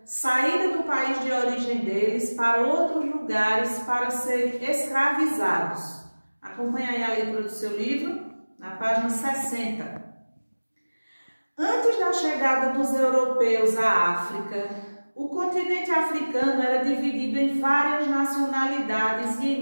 saída do país de origem deles para outros lugares para serem escravizados. Acompanhe aí a leitura do seu livro, na página 60. Antes da chegada dos europeus à África, o continente africano era dividido em várias nacionalidades e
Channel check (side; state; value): both; inverted; correlation -1.00